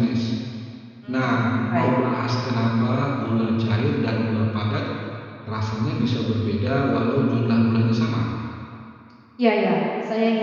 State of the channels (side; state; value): both; identical; correlation 1.00